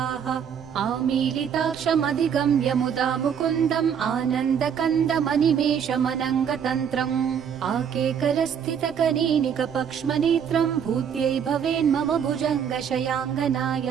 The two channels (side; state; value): left; quieter; 7.9 dB